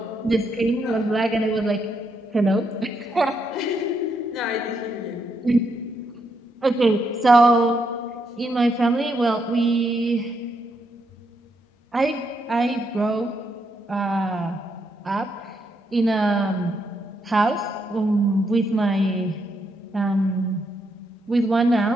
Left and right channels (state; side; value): normal; both; correlation 0.78